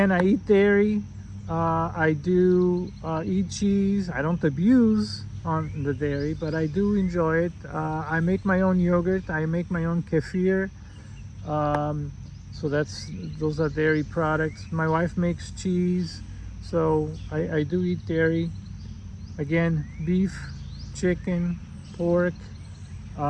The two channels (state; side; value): identical; both; correlation 1.00